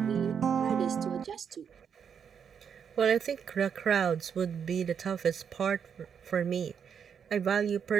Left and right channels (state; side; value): quieter; left; 7.3 dB